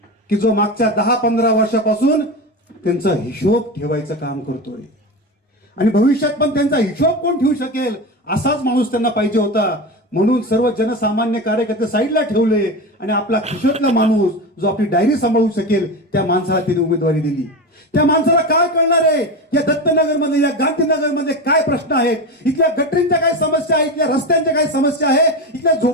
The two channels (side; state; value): both; normal; correlation 0.22